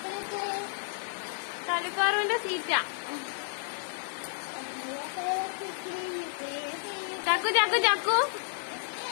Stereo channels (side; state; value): right; silent; 57 dB below the other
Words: കള്ളിപ്പാറുവിന്റെ സീറ്റാ. ചക്കു ചക്കു ചക്കു